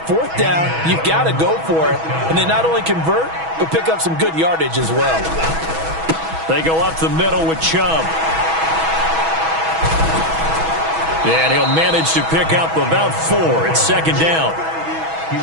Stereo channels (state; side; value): late; left; 6.2 ms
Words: 4th down, you've got to go for it. And they not only convert, but pick up some good yardage as well. They go up the middle with Chubb. And he'll manage to pick up about 4. It's 2nd down.